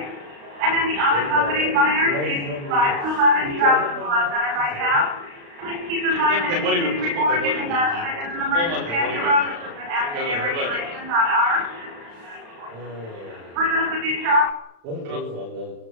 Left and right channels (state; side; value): late; left; 35 ms